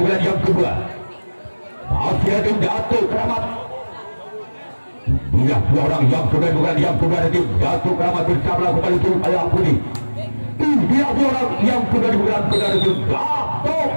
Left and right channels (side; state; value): both; inverted; correlation -1.00